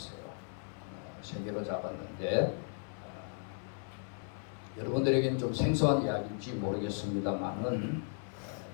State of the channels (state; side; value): silent; right; 54 dB below the other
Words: 3개로 잡았는데 여러분들에게는 좀 생소한 이야기인지 모르겠습니다만은